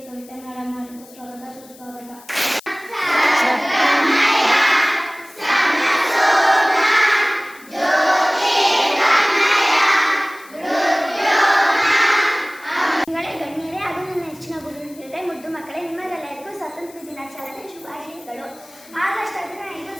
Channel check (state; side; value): noise; left; hiss, 23 dB below the sound